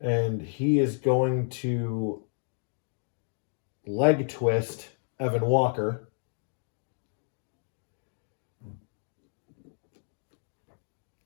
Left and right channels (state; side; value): silent; right; digital silence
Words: he is going to leg twist Evan Walker.